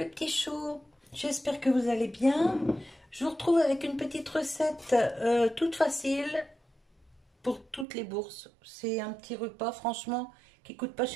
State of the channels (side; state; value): left; drops out; at 7.9 s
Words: les petits choux, j'espère que vous allez bien. Je vous retrouve avec une petite recette toute facile pour toutes les bourses. C'est un petit repas franchement qui coûte pas